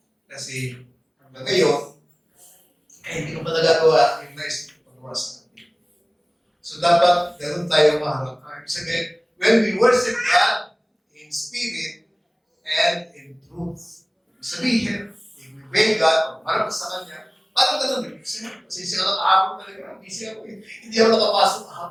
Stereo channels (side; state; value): both; identical; correlation 1.00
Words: Kasi hanggang ngayon, hindi ko pa nagagawa yung nice pagawa sa atin. So dapat ganun tayo maharap. Ibig sabihin, when we worship God in spirit and in truth. Ibig sabihin, if we obey God, pag sa Kanya, parang ganun. Kasi siya ka kahapon talaga. Busy ako eh. Hindi ako nakapasok